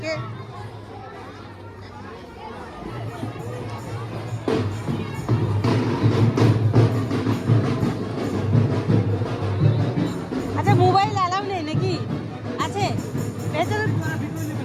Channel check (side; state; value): both; identical; correlation 1.00